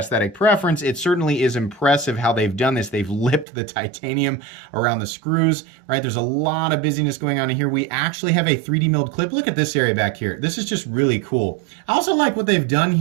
preference, it certainly is impressive how they've done this. They've lipped the titanium around the screws, right? There's a lot of busyness going on in here. We actually have a 3D milled clip. Look at this area back here. This is just really cool. I also like what they've done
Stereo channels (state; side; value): drops out; left; at 3.5 s